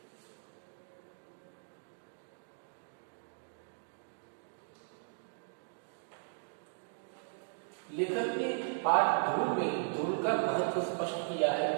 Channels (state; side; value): silent; left; digital silence